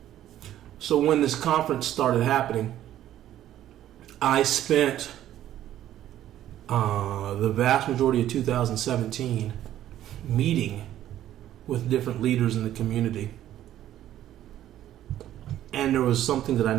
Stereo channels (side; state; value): left; quieter; 12.3 dB